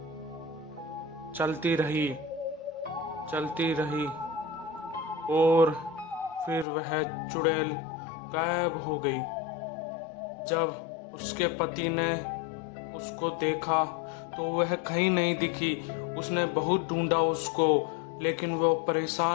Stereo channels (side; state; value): right; drops out; at 6.7 s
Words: चलती रही और फिर वह चुड़ैल गायब हो गई। जब उसके पति ने उसको देखा तो वह कहीं नहीं दिखी। उसने बहुत ढूंढा उसको, लेकिन वो